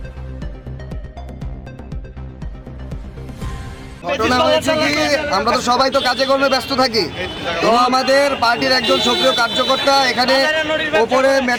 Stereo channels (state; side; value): identical; both; correlation 1.00